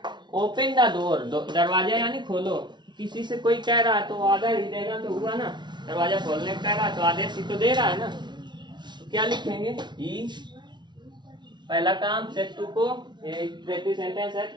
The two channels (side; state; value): left; late; 0.21 ms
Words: ओपन द डोर, दरवाजा यानी खोलो। किसी से कोई कह रहा है तो ऑर्डर ही देना तो हुआ ना, दरवाजा खोलने का कह रहा है तो आदेश ही तो दे रहा है ना, तो क्या लिखेंगे, ही। पहला काम सेट टू को, ये इंपरेटिव सेंटेंस है,